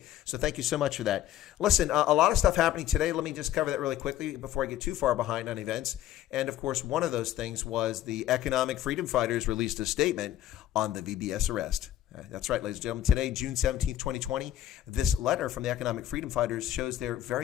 So thank you so much for that. Listen, a lot of stuff happening today. Let me just cover that really quickly before I get too far behind on events. And of course, one of those things was the Economic Freedom Fighters released a statement on the VBS arrest. That's right, ladies and gentlemen. Today, June 17th, 2020, this letter from the Economic Freedom Fighters shows they're very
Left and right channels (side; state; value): right; quieter; 12.5 dB